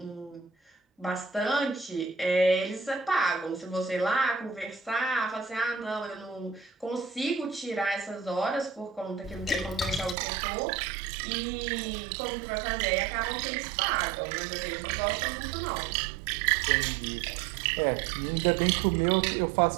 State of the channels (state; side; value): drops out; left; at 10.2 s